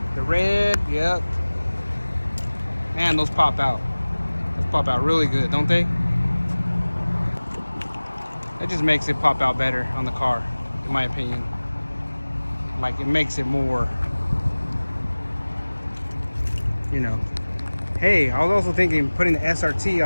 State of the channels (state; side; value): inverted; both; correlation -1.00